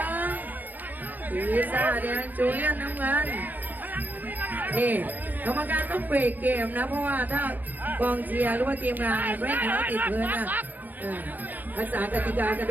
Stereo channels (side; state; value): left; late; 0.084 ms